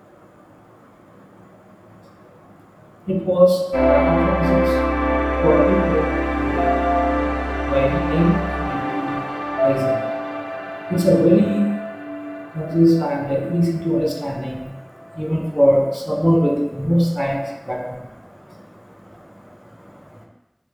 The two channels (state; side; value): identical; both; correlation 1.00